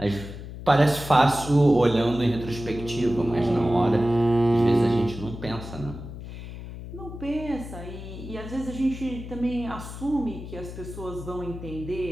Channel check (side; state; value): left; noise; hum, 11 dB below the sound